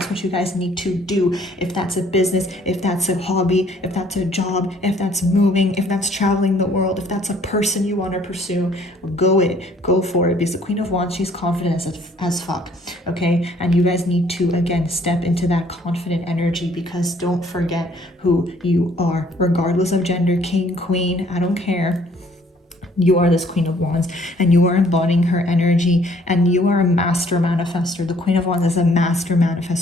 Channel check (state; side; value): normal; both; correlation 0.60